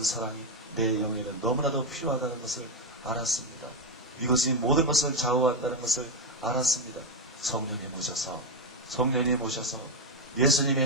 사랑이 내 영에는 너무나도 필요하다는 것을 알았습니다. 이것이 모든 것을 좌우한다는 것을 알았습니다. 성령님 오셔서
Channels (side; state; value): both; normal; correlation 0.07